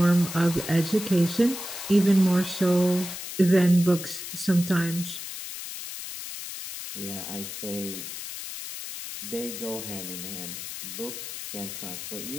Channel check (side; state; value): left; noise; hiss, 8 dB below the sound